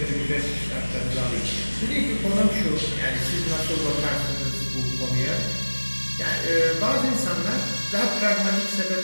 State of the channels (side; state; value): both; inverted; correlation -1.00